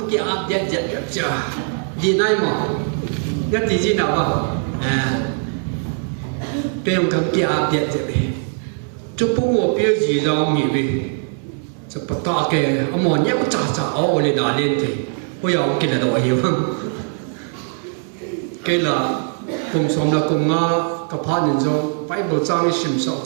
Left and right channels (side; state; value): left; silent; 58 dB below the other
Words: cái áp giật giật giật chưa. Đi này mà nhất thì gì nào không? Đây là cái kia áp điện thế này. Chú bố ngồi biểu gì đâu nghỉ về. Chú bắt ta cái ông mòn nhắc chả chả áo lên là lên thì bây giờ cái là đồ hiểu không? Cái là cùng sống là cùng ngã cái phá nhân trong phải bộ trang sinh sống